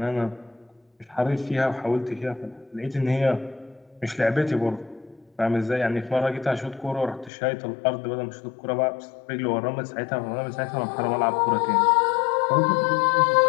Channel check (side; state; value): right; drops out; at 7.3 s